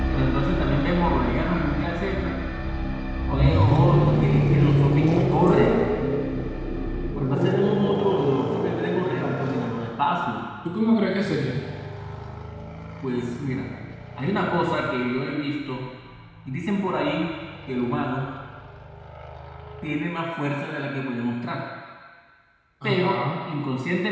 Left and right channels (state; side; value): identical; both; correlation 1.00